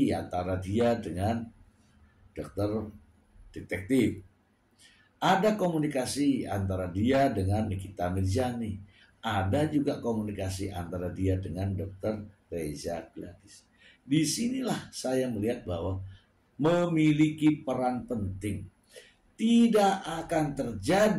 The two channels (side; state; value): both; identical; correlation 1.00